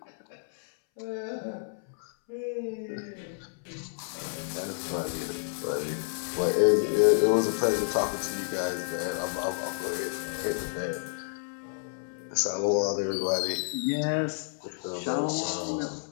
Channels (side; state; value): right; silent; 58 dB below the other